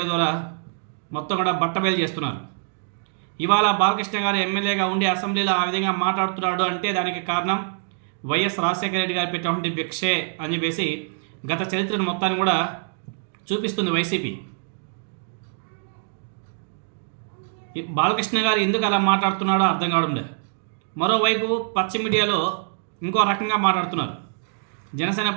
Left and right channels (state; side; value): silent; left; digital silence